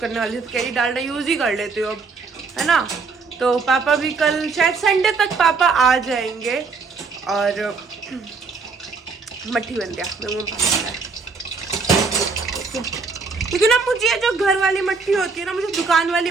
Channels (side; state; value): left; quieter; 4.5 dB